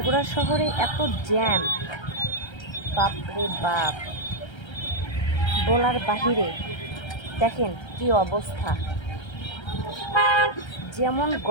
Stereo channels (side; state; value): right; late; 1.3 ms